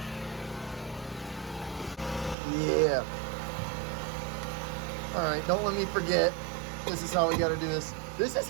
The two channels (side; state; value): left; drops out; at 2.4 s